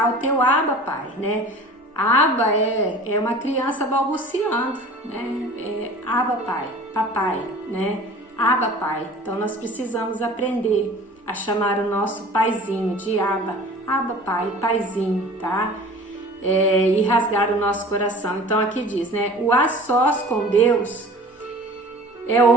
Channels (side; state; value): both; normal; correlation 0.43